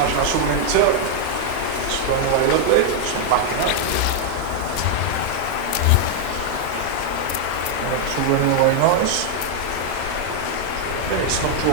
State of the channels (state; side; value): different; both; correlation 0.00